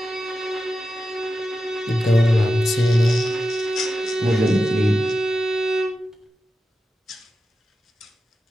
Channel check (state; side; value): normal; both; correlation 0.91